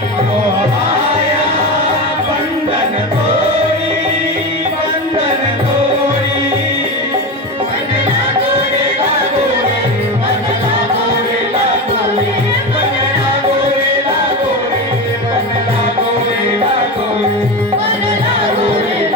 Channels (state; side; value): normal; both; correlation 0.21